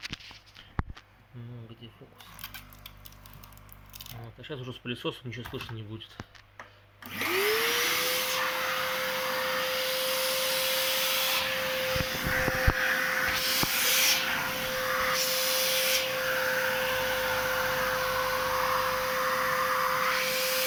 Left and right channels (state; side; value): identical; both; correlation 1.00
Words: Ну, где фокус? Вот. А сейчас уже с пылесосом ничего слышно не будет.